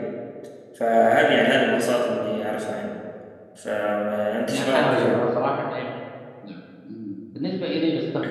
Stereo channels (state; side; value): identical; both; correlation 1.00